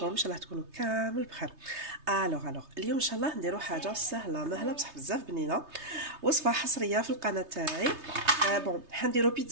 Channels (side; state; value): left; late; 3.3 ms